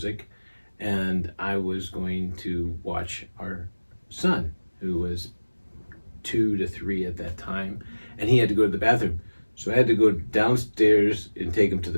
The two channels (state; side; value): inverted; both; correlation -1.00